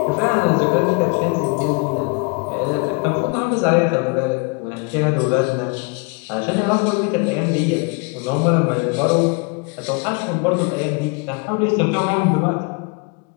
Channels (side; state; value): right; quieter; 32.4 dB